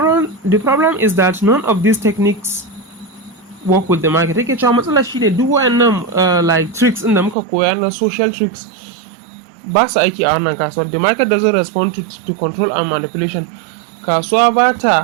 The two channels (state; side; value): drops out; left; at 7.4 s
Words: is that none of these techniques work with the market. Take cewa matsala shi ne duk wayannan tricks in da muka koya na social tricks ba su aiki a wannan kasuwar. The market doesn't respond to control and manipulation. Kasuwa ba